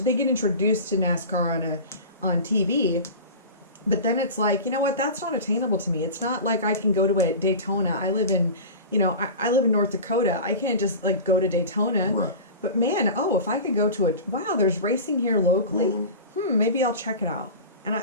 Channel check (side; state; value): both; inverted; correlation -0.32